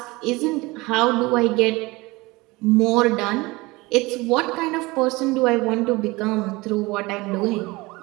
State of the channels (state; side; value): quieter; left; 22.6 dB